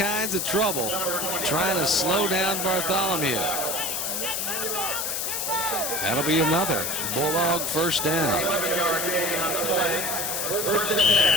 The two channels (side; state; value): left; noise; hiss, 1 dB below the sound